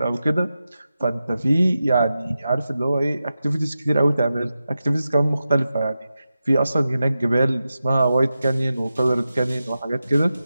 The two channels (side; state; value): both; inverted; correlation -0.92